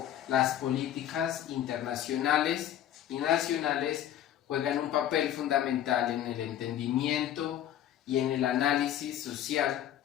las políticas internacionales y nacionales juegan un papel fundamental en el entendimiento y en el análisis social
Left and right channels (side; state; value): right; quieter; 11.1 dB